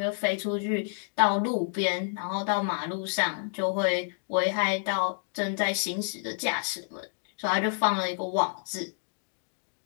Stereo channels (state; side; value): silent; right; digital silence